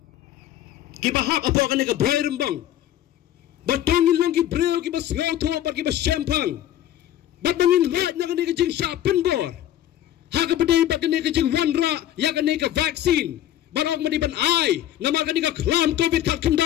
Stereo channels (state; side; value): quieter; right; 12.2 dB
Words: kibahak apo ka ni ka Bhoirymbong batongin lang ki breo ki bas ngauto ba ki bas champang batongin rat na ka ni ka jing jingpynbor ha ka padai ba ka ni ka jing wanra ya ka ni ka vaccine barok madiban ai nama ka ni ka klam covid kat